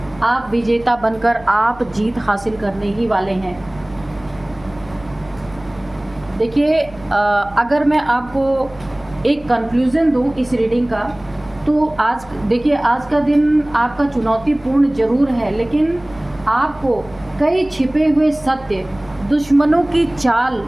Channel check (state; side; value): noise; right; hum, 22 dB below the sound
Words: आप विजेता बनकर आप जीत हासिल करने ही वाले हैं। देखिए, अगर मैं आपको एक कंक्लूज़न दूं इस रीडिंग का, तो आज देखिए, आज का दिन आपका चुनौतीपूर्ण ज़रूर है, लेकिन आपको कई छिपे हुए सत्य, दुश्मनों की चाल,